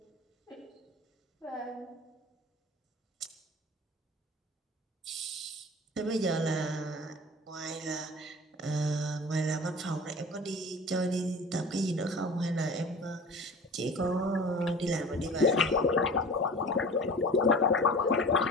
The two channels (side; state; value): both; normal; correlation 0.39